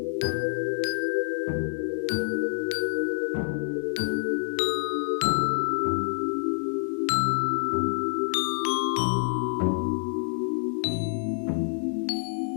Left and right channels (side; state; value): right; silent; 60 dB below the other